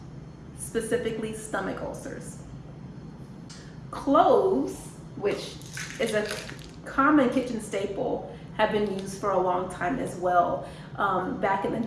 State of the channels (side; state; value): both; identical; correlation 1.00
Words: specifically stomach ulcers. Cloves, which is a common kitchen staple, have been used for a long time as well. Back in the